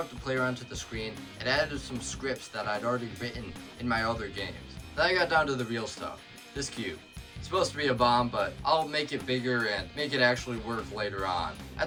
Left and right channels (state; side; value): identical; both; correlation 1.00